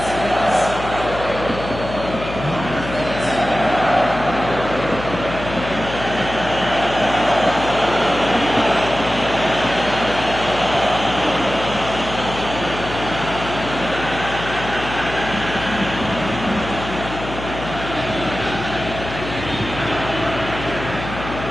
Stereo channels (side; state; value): left; noise; hum, 9 dB below the sound